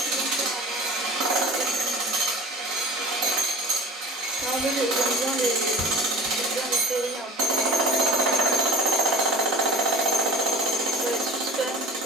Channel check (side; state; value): both; normal; correlation 0.40